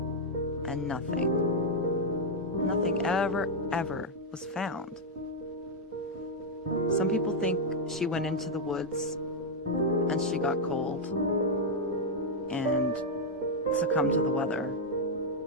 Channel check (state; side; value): normal; both; correlation -0.02